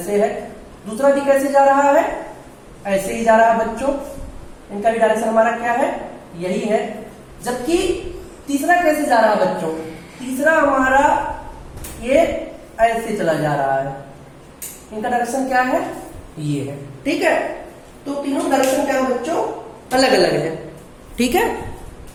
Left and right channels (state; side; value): identical; both; correlation 1.00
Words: है। दूसरा भी कैसे जा रहा है, ऐसे ही जा रहा है बच्चों, इनका भी डायरेक्शन हमारा क्या है, यही है। जबकि तीसरा कैसे जा रहा है बच्चों, तीसरा हमारा ये ऐसे चला जा रहा है, इनका डायरेक्शन क्या है, ये है, ठीक है। तो तीनों डायरेक्शन क्या है बच्चों, अलग अलग है, ठीक है।